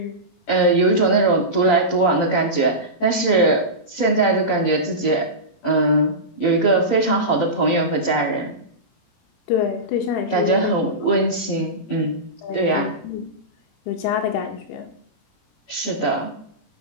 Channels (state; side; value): late; right; 18 ms